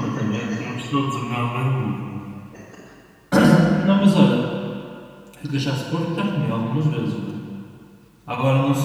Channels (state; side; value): identical; both; correlation 1.00